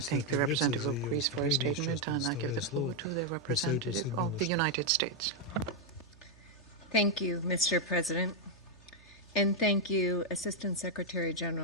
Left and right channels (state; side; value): noise; right; hum, 26 dB below the sound